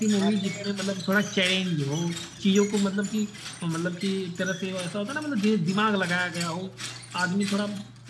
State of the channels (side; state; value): both; identical; correlation 1.00